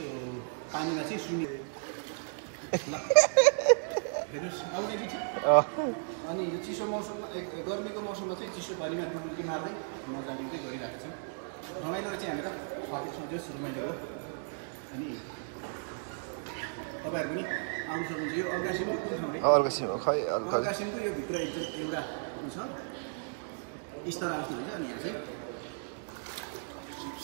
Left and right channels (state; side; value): silent; left; digital silence